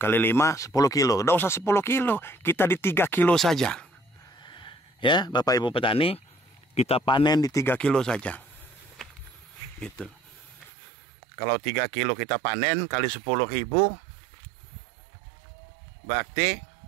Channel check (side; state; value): left; drops out; at 10.7 s